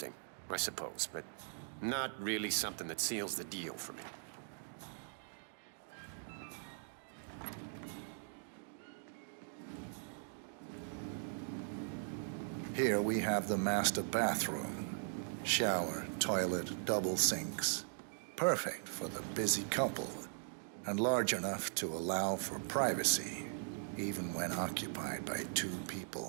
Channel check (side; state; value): left; silent; digital silence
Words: I suppose, but not really something that seals the deal for me. Here we have the master bathroom. Shower, toilet, double sinks. Perfect for the busy couple, and large enough to allow for privacy, even when occupied by two